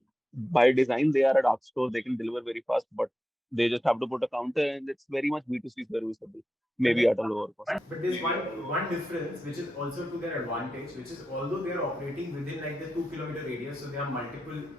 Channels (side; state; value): both; normal; correlation 0.89